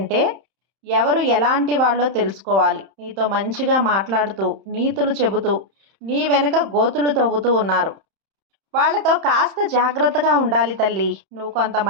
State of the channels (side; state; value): left; late; 31 ms